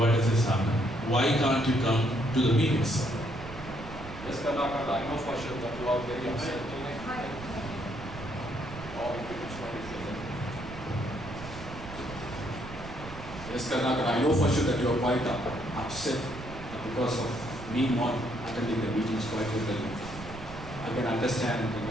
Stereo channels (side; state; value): right; noise; rumble, 12 dB below the sound